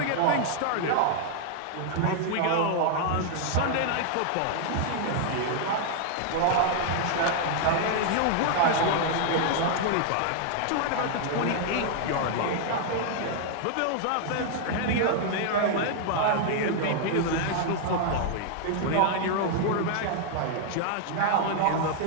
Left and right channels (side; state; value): both; different; correlation 0.00